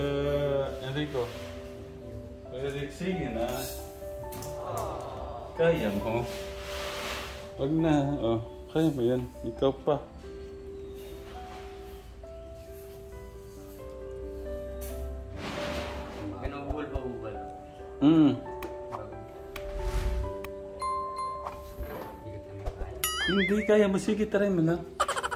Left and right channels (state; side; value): identical; both; correlation 1.00